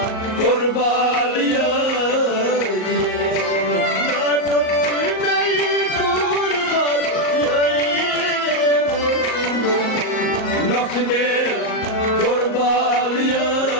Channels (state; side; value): late; right; 38 ms